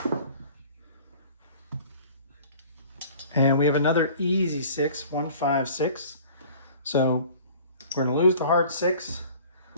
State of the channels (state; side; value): inverted; both; correlation -0.48